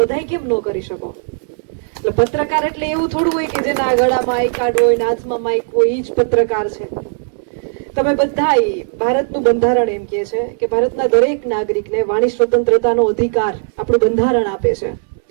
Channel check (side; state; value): left; silent; digital silence